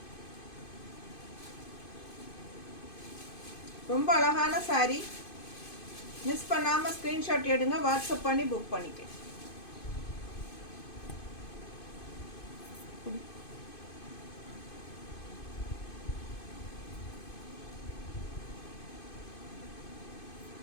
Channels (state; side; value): late; right; 2.5 ms